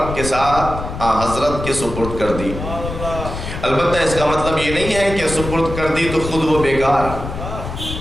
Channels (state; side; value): noise; left; rumble, 7 dB below the sound